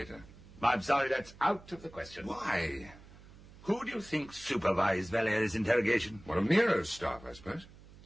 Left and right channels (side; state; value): right; noise; hum, 21 dB below the sound